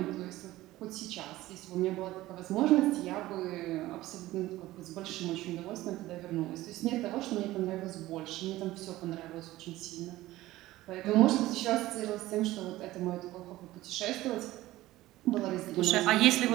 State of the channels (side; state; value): left; quieter; 16.7 dB